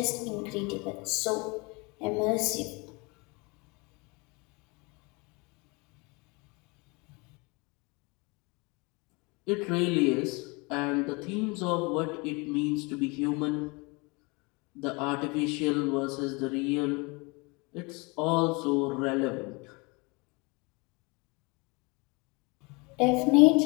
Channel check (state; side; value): quieter; right; 28.1 dB